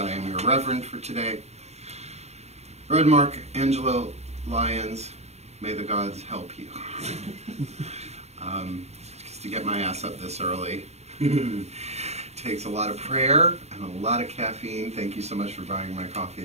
am your Reverend for today. Reverend Mark Angelo Lyons, may the gods help you. Just to get my ass up this early takes a lot of prayer and a lot of caffeine. Thank you so much for buying my coffee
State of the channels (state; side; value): late; left; 0.31 ms